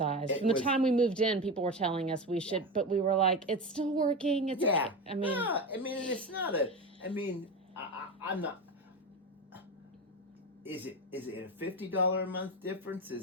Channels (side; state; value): both; normal; correlation 0.21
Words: From the time we moved in, people were telling us we should, but we were like, it's still working. It's yeah. I mean, it's not a. I'm not. Is it a $50 a month difference?